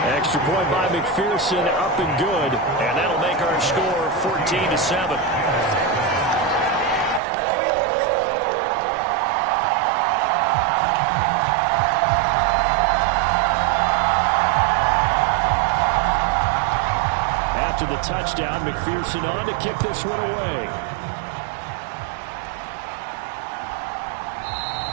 point by McPherson, up and good. And that'll make our score 14-7. After the touchdown, McPherson on to kick this one away.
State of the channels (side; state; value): left; drops out; at 7.2 s